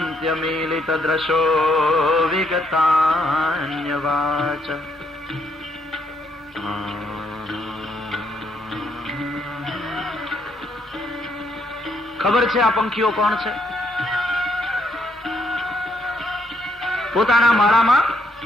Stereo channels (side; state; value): both; normal; correlation 0.73